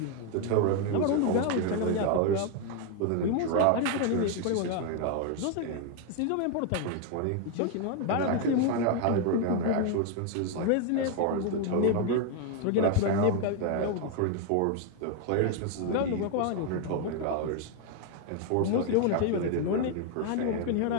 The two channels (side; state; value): both; different; correlation 0.01